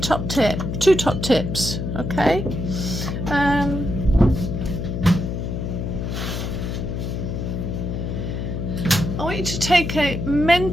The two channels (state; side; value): noise; left; hum, 3 dB below the sound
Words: tip, 2 top tips, okay? I want you to take a